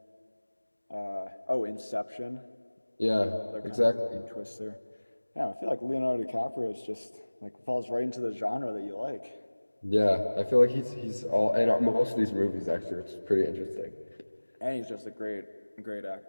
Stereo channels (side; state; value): both; inverted; correlation -1.00